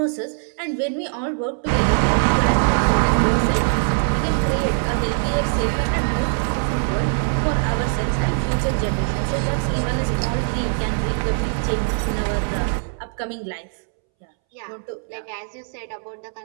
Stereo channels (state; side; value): silent; left; 64 dB below the other